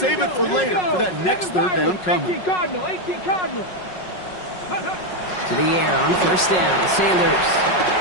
it for later for that next 3rd down coming. 18 Cardinal, 18 Cardinal. To the air on 1st down. Sanders.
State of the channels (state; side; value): late; right; 5.5 ms